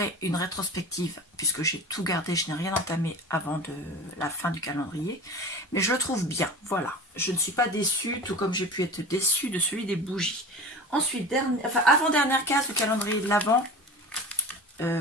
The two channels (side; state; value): both; normal; correlation 0.34